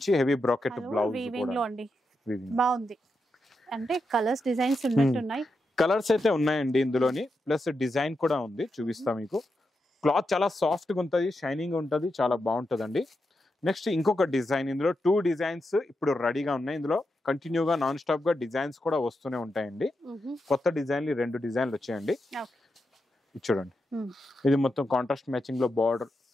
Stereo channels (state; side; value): normal; both; correlation 0.86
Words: హెవీ బ్రాకెట్ బ్లౌజ్ బాగుంది. అంటే కలర్స్ డిజైన్స్ ఉన్నట్టున్నాయి. కలర్స్ అయితే ఉన్నాయండి ఇందులోని, ప్లస్ డిజైన్ కూడా ఉంది, చూపిస్తా మీకు. క్లాత్ చాలా సాఫ్ట్ గా ఉంటది, షైనింగ్ ఉంటది, చాలా బాగుంటదండి. నెక్స్ట్ ఇంకొక డిజైన్, ఇందులో 2 డిజైన్స్ ఇప్పుడు రెడీగా ఉన్నాయి. ఇందులో కంటిన్యూగా నాన్ స్టాప్ గా డిజైన్స్ కూడా వస్తూనే ఉంటాయండి. కొత్త డిజైన్లు 2 డిజైన్లు వచ్చాయండి. చూడండి, ఇది మొత్తం కాంట్రాస్ట్ మ్యాచింగ్ లో బార్డర్,